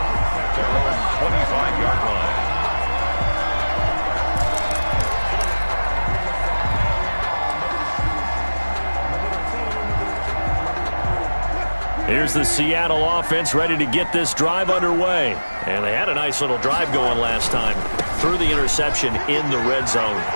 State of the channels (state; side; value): inverted; both; correlation -1.00